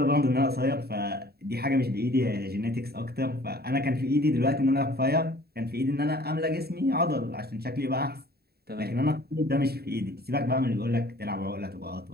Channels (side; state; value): left; late; 0.46 ms